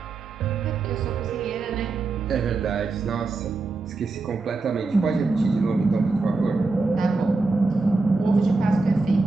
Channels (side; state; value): left; quieter; 3.7 dB